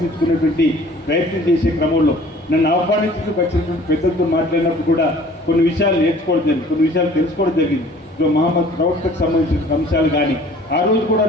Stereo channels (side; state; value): both; normal; correlation 0.51